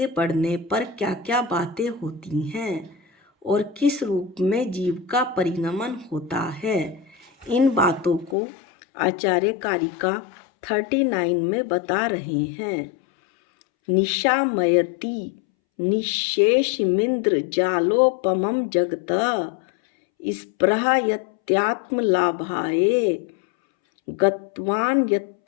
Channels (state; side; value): drops out; right; at 8.3 s